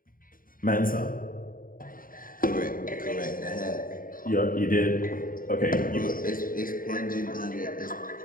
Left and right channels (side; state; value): right; late; 0.41 ms